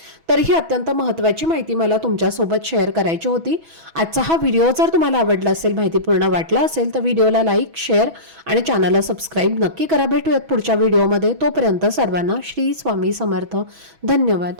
तर ही अत्यंत महत्त्वाची माहिती मला तुमच्यासोबत शेअर करायची होती। आजचा हा व्हिडिओ जर तुम्हाला आवडला असेल, माहितीपूर्ण वाटला असेल तर व्हिडिओला लाईक, शेअर आणि चॅनलला सबस्क्राईब नक्की करा। भेटूयात पुढच्या व्हिडिओमध्ये। तोपर्यंत सर्वांना श्री स्वामी समर्थ। धन्यवाद।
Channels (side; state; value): left; late; 6.1 ms